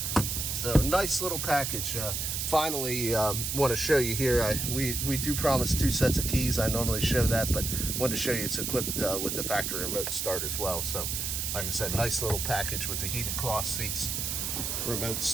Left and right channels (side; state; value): right; noise; hiss, 2 dB below the sound